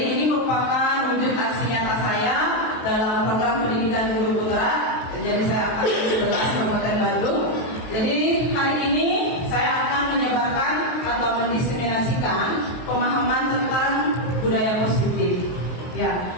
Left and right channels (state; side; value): late; right; 23 ms